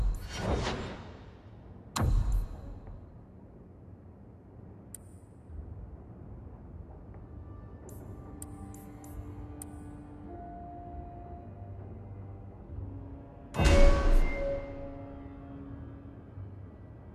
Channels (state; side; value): identical; both; correlation 1.00